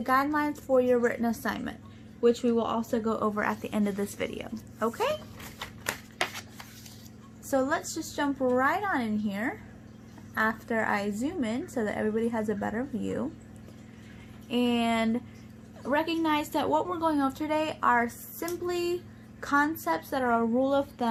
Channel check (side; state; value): both; identical; correlation 1.00